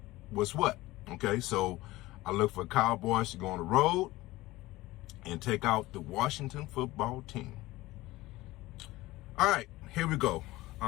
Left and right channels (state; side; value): quieter; right; 18.5 dB